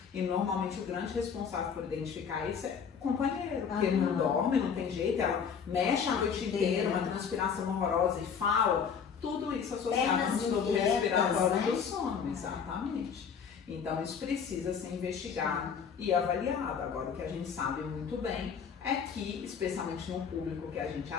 E normalmente o grande responsável por identificar isso é o companheiro, porque ele não dorme, não tem jeito, ela mexe a noite inteira, uma transpiração horrorosa e fala, tudo isso associado ao distúrbio respiratório do sono, exatamente. Então isso precisa ser investigado e avaliado. Agora o que a gente sabe muito bem é que, especialmente no público que a gente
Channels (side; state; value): right; quieter; 6.8 dB